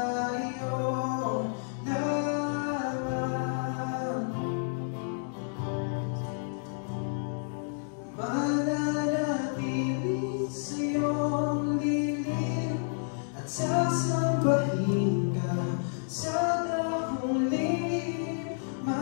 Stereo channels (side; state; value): right; silent; digital silence